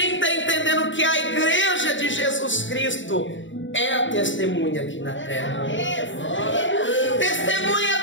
está entendendo que a igreja de Jesus Cristo é a testemunha aqui na terra? Testemunha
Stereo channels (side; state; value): right; late; 0.55 ms